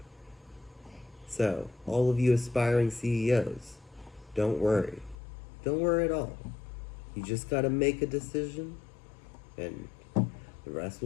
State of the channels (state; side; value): drops out; right; at 5.2 s